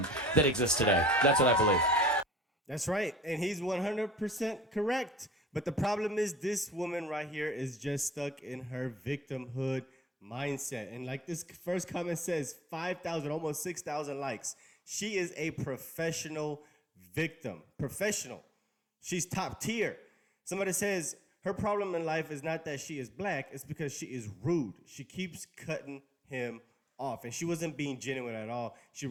that exists today. That's what I believe. That's right. And he's 100% correct. But the problem is this woman right here is just stuck in her victimhood mindset. And like this first comment says, 5,000, almost 6,000 likes. She is a professional victim. Professional. She's top tier. Somebody says her problem in life is not that she is black, it's because she is rude. She keeps cutting him off. And she wasn't being genuine at all. She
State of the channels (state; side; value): normal; both; correlation 0.57